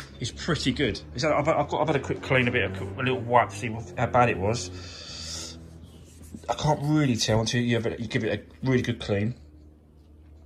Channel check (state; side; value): identical; both; correlation 1.00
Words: is pretty good. I've had a quick clean, a little wipe to see how bad it was. I can't really tell until you give it a really good clean.